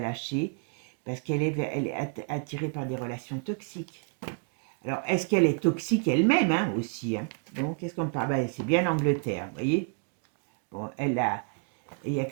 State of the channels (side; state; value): left; quieter; 39.2 dB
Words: parce elle est attirée par des relations toxiques. Alors, est-ce qu'elle est toxique elle-même, hein, aussi, hein? Donc, qu'est-ce qu'on parle? Ben, c'est bien l'Angleterre, vous voyez. Bon, il y a